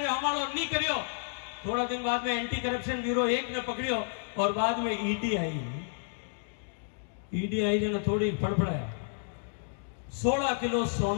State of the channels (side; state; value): right; silent; digital silence